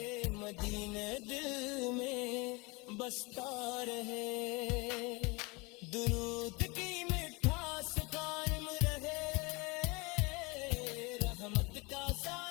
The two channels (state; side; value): quieter; right; 26.6 dB